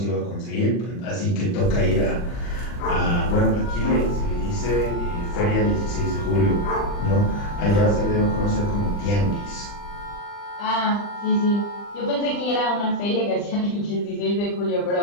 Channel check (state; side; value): late; right; 40 ms